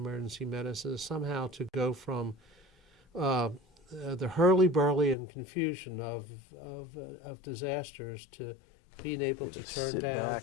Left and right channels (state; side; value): drops out; right; at 5.2 s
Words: medicine, is somehow to go from the hurly-burly and confusion of disasters to being able to turn down,